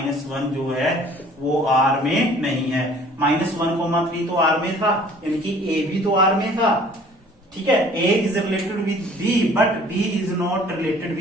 जो है वो आर में नहीं है। -1, 3 तो आर में था, यानी कि ए भी तो आर में था। ठीक है, A is related with B but B is not related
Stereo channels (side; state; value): both; normal; correlation 0.52